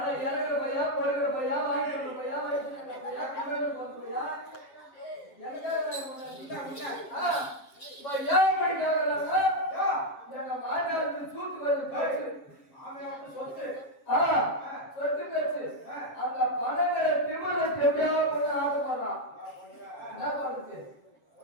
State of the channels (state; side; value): late; right; 7.3 ms